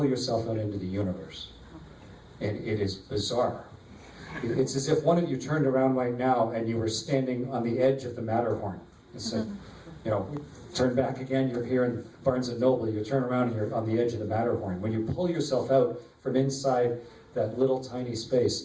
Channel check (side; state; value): both; identical; correlation 1.00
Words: yourself out into the universe. And it is bizarre. It's as if one of you turned around right now and you were standing on the edge of the Matterhorn. It's like, you know, turn back again, you're here in Barnes & Noble, you turn around and you're on the edge of the Matterhorn. When you pull yourself out from inside that little tiny